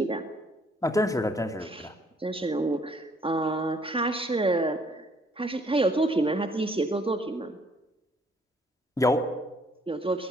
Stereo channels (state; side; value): normal; both; correlation 0.63